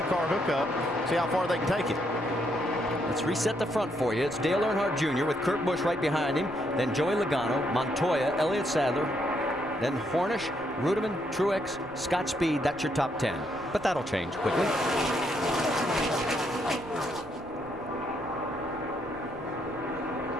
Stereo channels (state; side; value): noise; right; rumble, 22 dB below the sound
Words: hookup. See how far they can take it. Let's reset the front for you. It's Dale Earnhardt Jr. with Kurt Busch right behind him. Then Joey Logano, Montoya, Elliott Sadler. Then Hornish, Ruderman, Truex, Scott Speed. That's your top 10. But that'll change quickly.